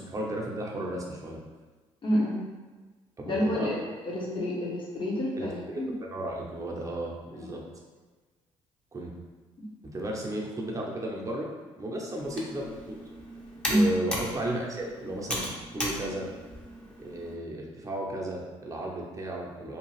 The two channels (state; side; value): normal; both; correlation 0.70